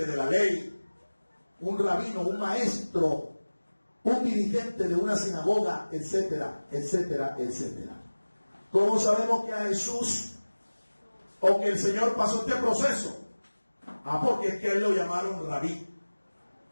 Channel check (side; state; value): both; inverted; correlation -1.00